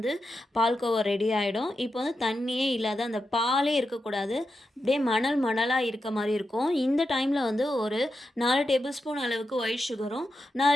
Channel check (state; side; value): normal; both; correlation 0.88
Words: பால்கோவா ரெடி ஆயிடும். இப்போ வந்து தண்ணியே இல்லாத அந்த பாலே இருக்கக்கூடாது. அப்படியே மணல் மணலா இருக்க மாரி இருக்கும். இந்த டைம்ல வந்து ஒரு 4 டேபிள் ஸ்பூன் அளவுக்கு ஒயிட் சுகரும்,